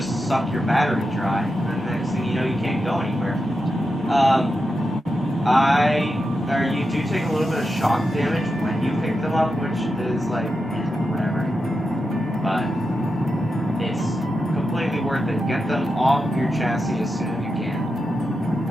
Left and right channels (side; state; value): both; normal; correlation 0.88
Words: suck your battery dry, and the next thing you know, you can't go anywhere. You do take a little bit of shock damage when you pick them up, which is like, whatever. But it's completely worth it. Get them off your chassis as soon as you can.